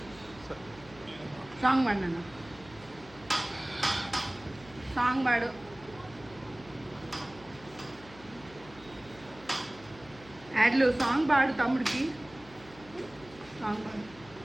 సాంగ్ పాడు నాన్న, సాంగ్ పాడు. యాడ్లు సాంగ్ పాడు తమ్ముడికి, సాంగ్ పాడు.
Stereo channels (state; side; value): noise; left; hum, 21 dB below the sound